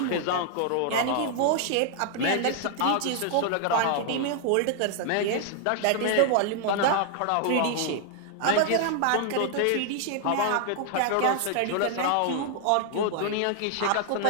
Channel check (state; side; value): different; both; correlation 0.00